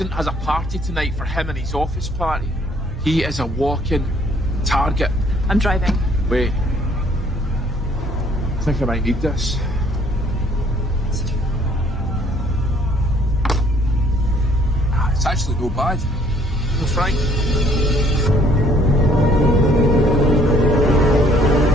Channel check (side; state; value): both; normal; correlation 0.61